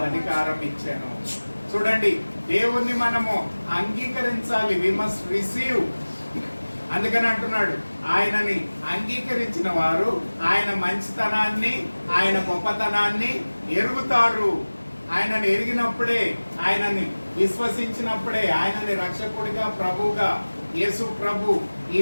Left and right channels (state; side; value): inverted; both; correlation -1.00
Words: ఇచ్చాను. చూడండి, దేవుణ్ణి మనము అంగీకరించాలి. We must receive. అందుకని అంటున్నాడు, ఆయనని అంగీకరించిన వారు ఆయన మంచితనాన్ని, ఆయన గొప్పతనాన్ని ఎరుగుతారు. ఆయనని ఎరిగినప్పుడే, ఆయనని విశ్వసించినప్పుడే, ఆయనని రక్షకుడిగా ప్రభువుగా యేసు ప్రభు ఈ